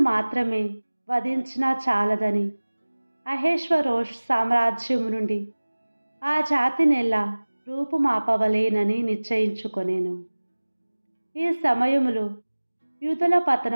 మాత్రమే వధించినా చాలదని అహేష్వరోష్ సామ్రాజ్యము నుండి ఆ జాతినెల్లా రూపుమాపవలేనని నిశ్చయించుకొనెను. ఈ సమయములో యూదుల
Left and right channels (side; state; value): both; inverted; correlation -1.00